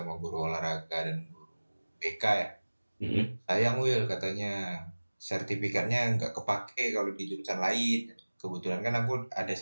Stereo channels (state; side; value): inverted; both; correlation -1.00